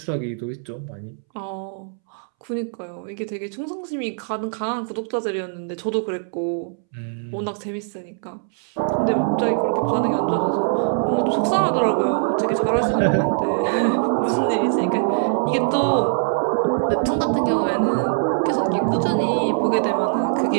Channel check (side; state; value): left; silent; 64 dB below the other